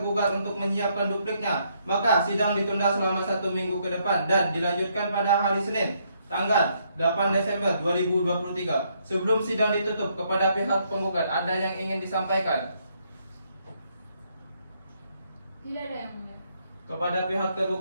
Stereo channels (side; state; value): both; inverted; correlation -0.72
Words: untuk menyiapkan dupliknya, maka sidang ditunda selama 1 minggu ke depan dan dilanjutkan pada hari Senin, tanggal 8 Desember 2023. Sebelum sidang ditutup, kepada pihak penggugat ada yang ingin disampaikan? Tidak ada yang mulia. Kepada pihak